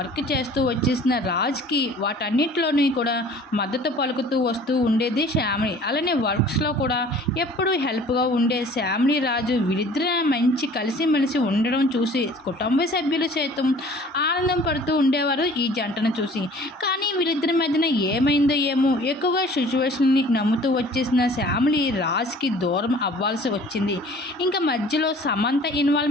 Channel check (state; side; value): normal; both; correlation 0.49